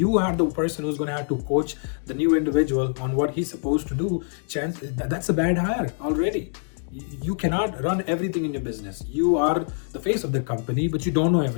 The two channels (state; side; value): silent; right; 60 dB below the other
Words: are the person who's going to have to coach the new individual on what he's supposed to do, that's a bad hire already. You cannot run everything in your business. You are the face of the company, but you don't know